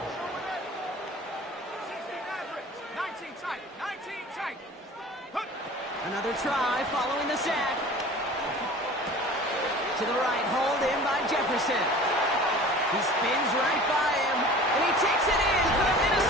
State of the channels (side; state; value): both; normal; correlation 0.42